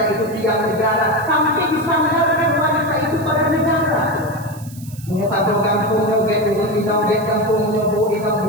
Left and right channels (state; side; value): noise; right; hiss, 20 dB below the sound